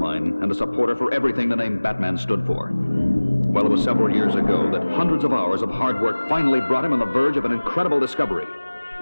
and a supporter for everything the name Batman stood for. Well, it was several years ago that hundreds of hours of hard work finally brought him on the verge of an incredible discovery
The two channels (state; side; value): inverted; both; correlation -1.00